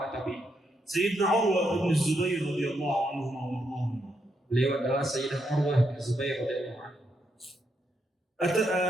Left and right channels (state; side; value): normal; both; correlation 0.80